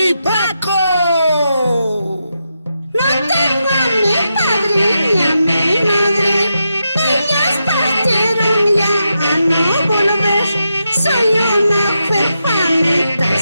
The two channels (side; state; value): both; inverted; correlation -0.86